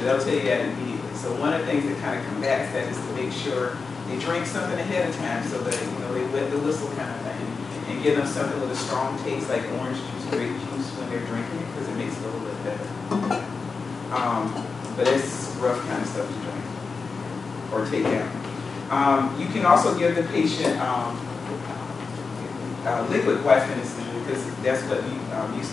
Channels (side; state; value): right; quieter; 4.7 dB